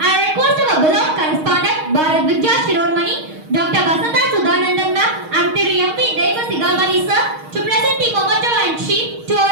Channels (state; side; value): late; left; 6.4 ms